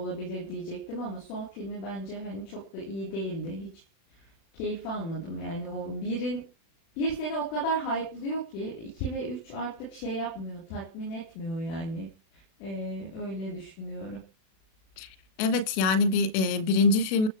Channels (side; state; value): right; late; 37 ms